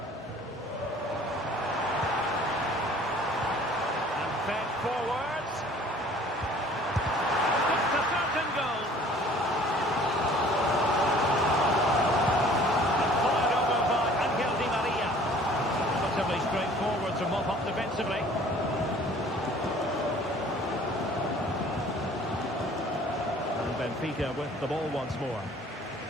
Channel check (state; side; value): normal; both; correlation 0.52